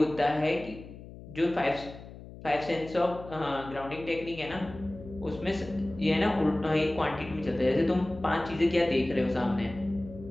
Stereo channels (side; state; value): left; noise; hum, 15 dB below the sound